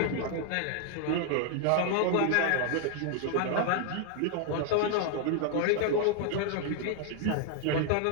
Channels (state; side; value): different; both; correlation 0.00